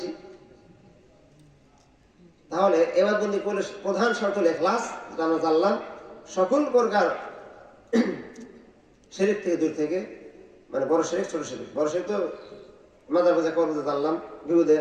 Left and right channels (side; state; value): both; identical; correlation 1.00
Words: তাহলে এবার বন্দি করলে প্রধান শর্ত হলো ইখলাস, যেটা আমরা জানলাম। সকল প্রকার শিরক থেকে দূর থেকে, মানে বড় শিরক ছোট শিরক। বড় শিরক তো মাজার পূজা করবো, জানলাম। বিপদে